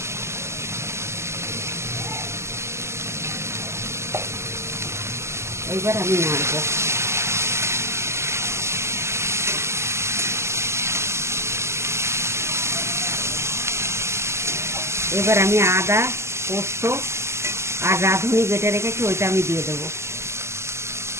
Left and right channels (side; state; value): left; late; 0.13 ms